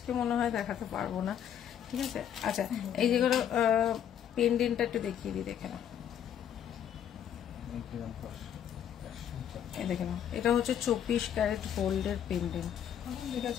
মনে হয় দেখাতে পারবো না, ঠিক আছে। আচ্ছা এই যেগুলো পেন্ডেন্টটা একটু দেখিয়ে দিই, দেখে নাও, এই দেখে নাও, এটা হচ্ছে 24 ক্যারেট গোল্ডের পেন্ডেন্ট, ঠিক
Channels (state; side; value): quieter; right; 9.5 dB